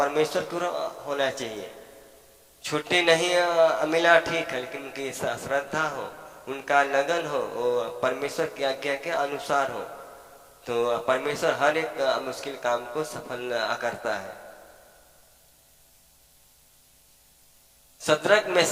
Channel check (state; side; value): identical; both; correlation 1.00